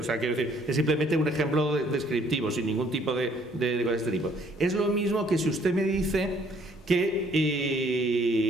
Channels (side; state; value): both; normal; correlation 0.62